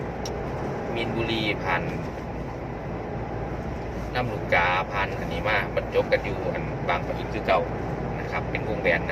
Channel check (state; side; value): identical; both; correlation 1.00